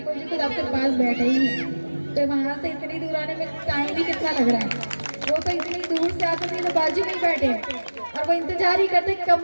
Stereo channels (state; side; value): inverted; both; correlation -1.00